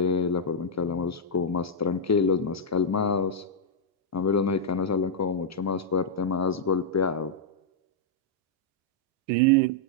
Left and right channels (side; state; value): both; normal; correlation -0.06